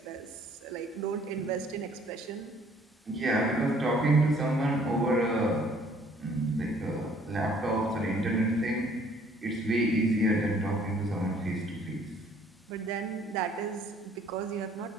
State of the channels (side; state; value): both; normal; correlation 0.59